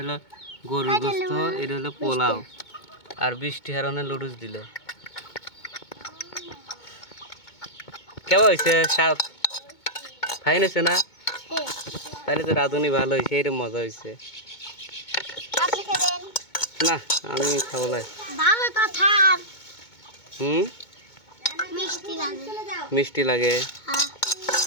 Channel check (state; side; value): late; right; 2.2 ms